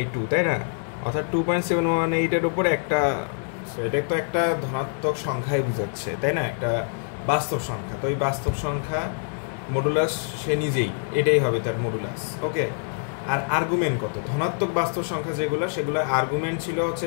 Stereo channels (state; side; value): silent; right; 59 dB below the other